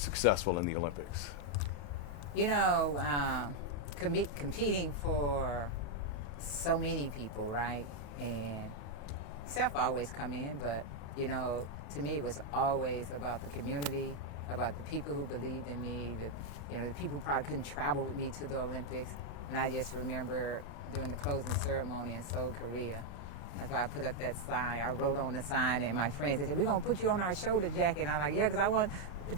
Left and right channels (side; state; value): right; late; 35 ms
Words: in the Olympics? You know, competing for so many people, right? And self always come in, but to me, it was always about the community, about the people who believed in me, the people who probably couldn't travel with me to the Olympics. And I just remember during the closing ceremony in Seoul, Korea, that's why I put up that sign. I wrote on the sign, and my friends, they said, "We're going to put you on our shoulder, Jackie." And I'm like, "Yeah, because I want the